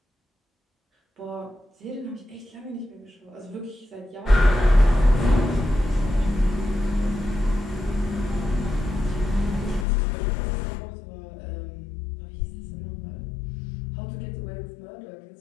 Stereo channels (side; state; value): right; drops out; at 9.9 s